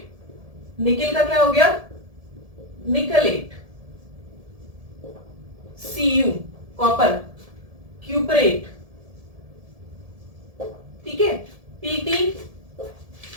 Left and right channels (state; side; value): late; left; 1.7 ms